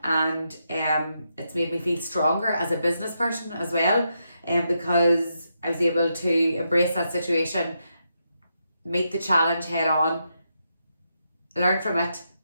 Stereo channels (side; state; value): both; inverted; correlation -0.82